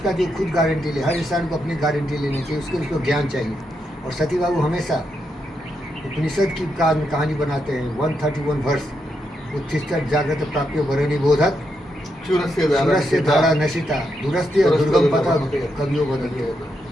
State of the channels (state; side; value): normal; both; correlation 0.82